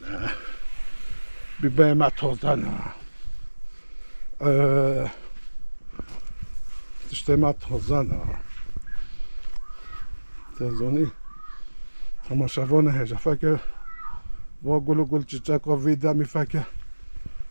نه بیبر ما تازه نه تشته ما تازه نه تازانی همه شوانه هجا فکر و گل چیچک و ویدمی فکر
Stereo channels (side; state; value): both; inverted; correlation -1.00